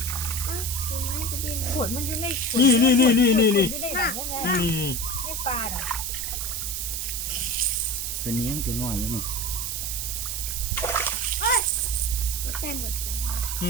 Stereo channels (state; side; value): noise; right; hiss, 2 dB below the sound